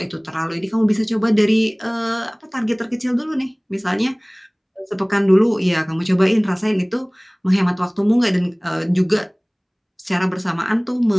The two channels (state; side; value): identical; both; correlation 1.00